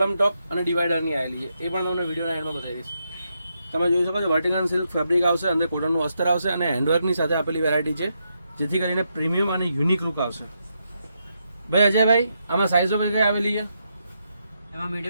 ટોપ અને ડિવાઈડરની આવેલી છે, એ પણ તમને વિડીયોના એન્ડમાં બતાવી દઈશ. તમે જોઈ શકો છો, વર્ટિકલ સિલ્ક ફેબ્રિક આવશે, અંદર કોટનનું અસ્તર આવશે અને હેન્ડવર્કની સાથે આપેલી વેરાયટી છે, જેથી કરીને પ્રીમિયમ અને યુનિક લુક આવશે. ભાઈ અજયભાઈ, આમાં સાઇઝો કઈ આવેલી છે? એમાં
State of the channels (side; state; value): both; inverted; correlation -0.81